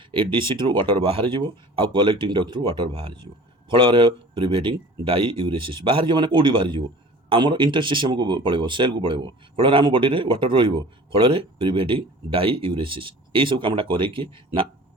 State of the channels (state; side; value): normal; both; correlation 0.44